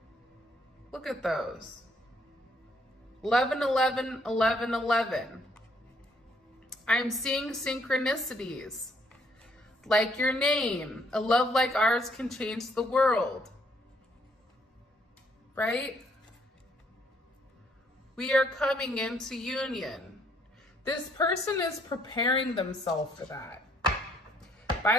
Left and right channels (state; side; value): normal; both; correlation 0.68